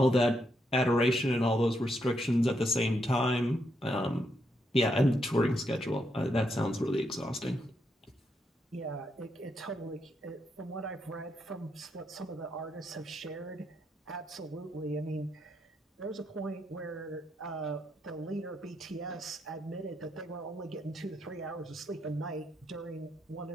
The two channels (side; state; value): both; normal; correlation 0.79